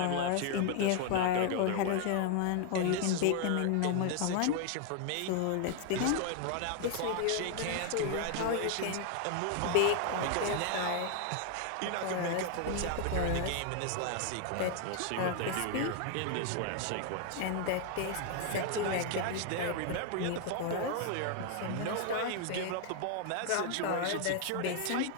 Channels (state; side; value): different; both; correlation 0.00